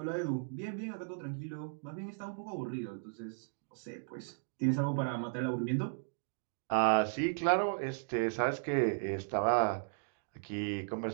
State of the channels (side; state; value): left; silent; digital silence